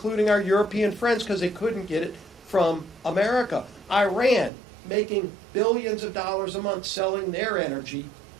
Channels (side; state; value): left; drops out; at 4.5 s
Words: our European friends, because they couldn't get it from America. Iran making billions of dollars a month selling their energy,